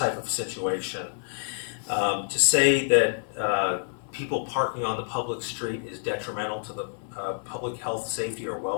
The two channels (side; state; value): right; silent; 60 dB below the other